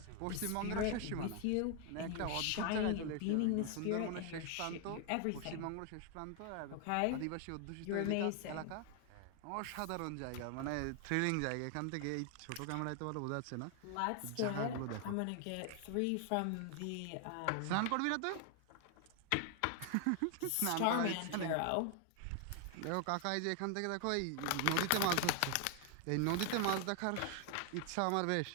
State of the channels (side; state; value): both; different; correlation 0.00